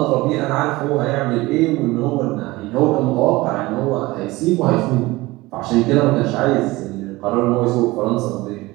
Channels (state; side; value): quieter; left; 20.3 dB